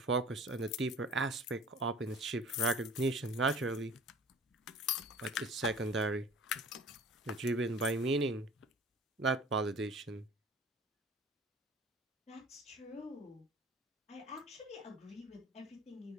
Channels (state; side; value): normal; both; correlation 0.44